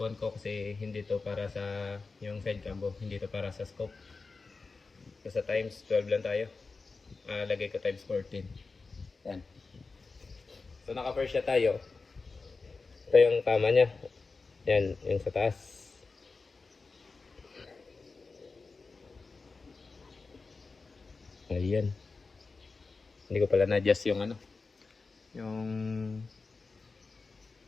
ko kasi hindi to para sa yung side cam, hindi to para sa scope. So sa times 12 lang tayo. Lagay ko times 14. Yan. So naka-first siya tayo. Ito yung tama niya. Yan, yung sa taas. Ayan. Hindi ko pala na-adjust yung yung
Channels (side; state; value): right; quieter; 4.1 dB